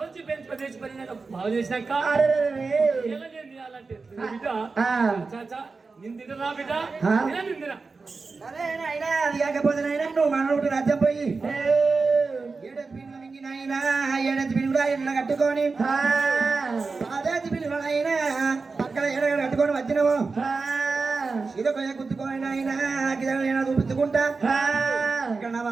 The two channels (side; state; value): left; quieter; 4.3 dB